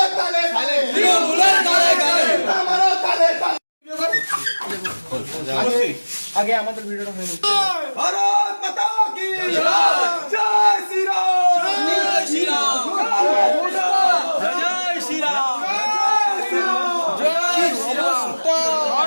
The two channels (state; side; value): inverted; both; correlation -1.00